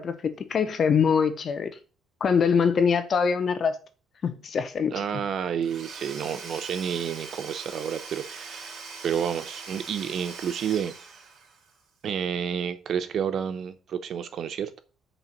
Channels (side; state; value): both; normal; correlation 0.70